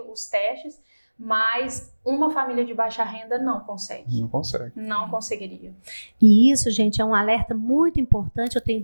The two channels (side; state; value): both; inverted; correlation -1.00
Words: os testes, mas uma família de baixa renda não consegue. Não consegue. Não conseguiria. E isso, gente, é um alerta muito importante, eu tenho